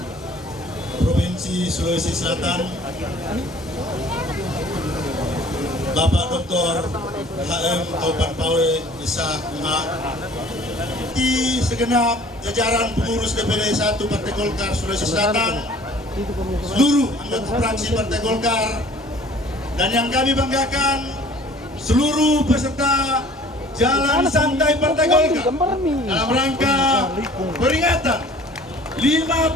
Provinsi Sulawesi Selatan, Bapak Dr. HM Taupan Pawe Isa MA, di segenap jajaran pengurus DPD 1 Partai Golkar Sulawesi Selatan, seluruh anggota fraksi Partai Golkar, dan yang kami banggakan seluruh peserta Jalan Santai Partai Golkar dalam rangka peringatan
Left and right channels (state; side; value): normal; both; correlation 0.51